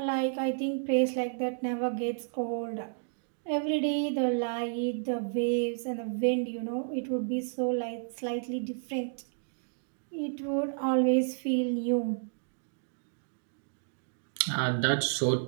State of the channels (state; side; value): silent; left; digital silence